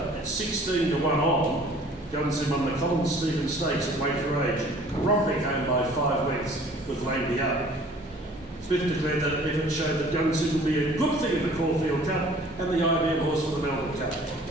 at 16-1 on, Gunsynd won the Colin Stevens Stakes at weight for age, rocking home by 5 lengths with Langby up. Smith declared that effort showed that Gunsynd would be a good thing in the Caulfield Cup and the IBM horse for the Melbourne Cup.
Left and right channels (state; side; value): normal; both; correlation 0.52